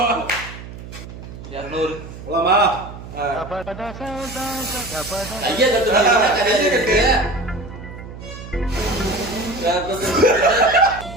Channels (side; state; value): right; noise; hum, 13 dB below the sound